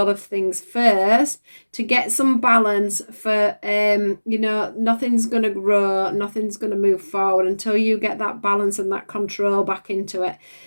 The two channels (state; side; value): inverted; both; correlation -1.00